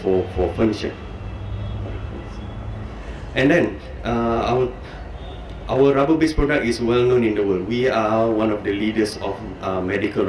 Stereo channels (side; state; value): both; identical; correlation 1.00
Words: furniture. And then our rubber-based product is well known in the world. We are one of the leaders of medical